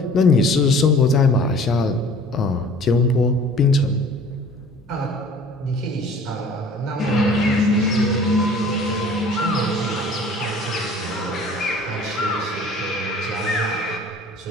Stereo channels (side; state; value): both; normal; correlation 0.48